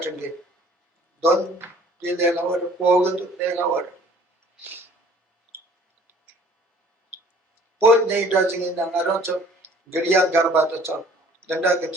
it. Don't do their hour, forward to their hour. Both they doesn't in the Naranto, Guriya Garbata Chop, the Nugget,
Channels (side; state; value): both; normal; correlation 0.54